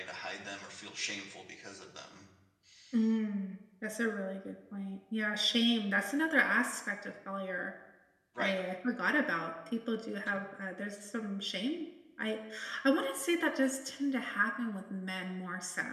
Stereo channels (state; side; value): identical; both; correlation 1.00